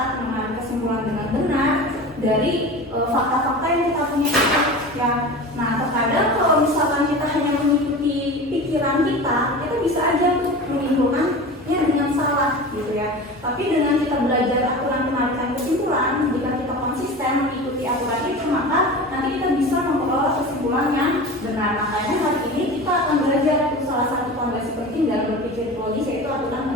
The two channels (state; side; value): normal; both; correlation 0.32